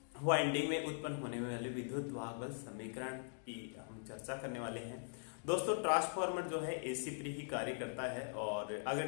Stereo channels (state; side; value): silent; right; digital silence